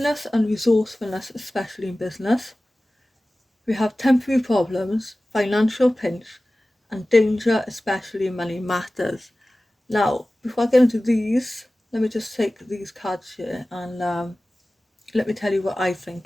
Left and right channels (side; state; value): both; normal; correlation 0.97